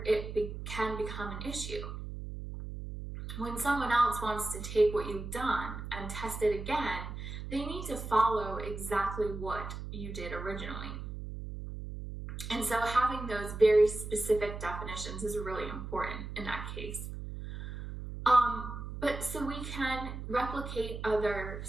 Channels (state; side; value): noise; right; hum, 8 dB below the sound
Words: it can become an issue. When someone else wants to take what you've done and test it again, they need to follow exactly what you did originally. And so having those very specific definitions is really important in that case. But so we can replicate other